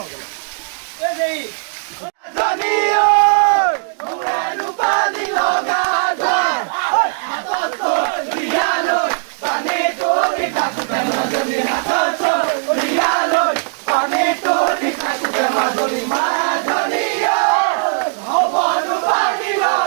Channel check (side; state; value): left; silent; digital silence